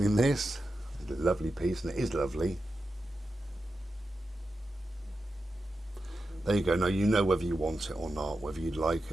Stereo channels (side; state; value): both; normal; correlation 0.90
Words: this lovely piece, and it is lovely. There you go. Now you know whether you want it or not, whether you like